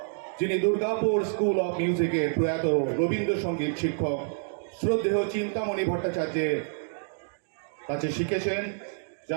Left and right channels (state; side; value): silent; left; digital silence